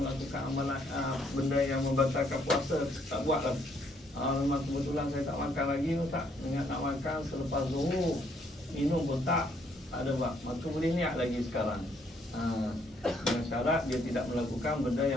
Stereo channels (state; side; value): normal; both; correlation 0.69